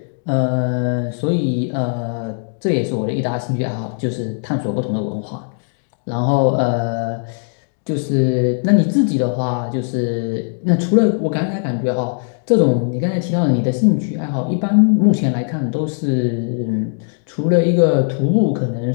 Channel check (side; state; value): right; silent; digital silence